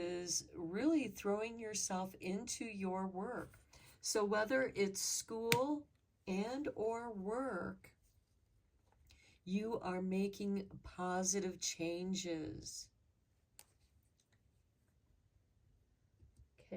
really throwing yourself into your work. So whether it's school and or work, you are making positive changes.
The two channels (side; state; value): both; identical; correlation 1.00